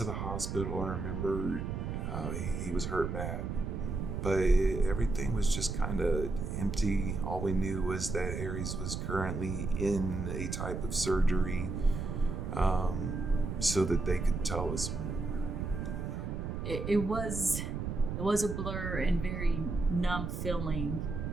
the hospital. I remember he was hurt bad, but everything was just kind of empty. All we knew was that Aries was currently in a type of surgery, so that they could tell us more. It was a blur and very numb feeling,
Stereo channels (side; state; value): right; noise; rumble, 3 dB below the sound